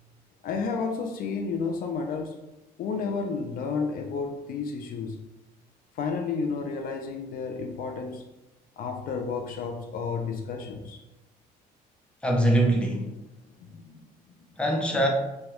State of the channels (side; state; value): both; normal; correlation 0.59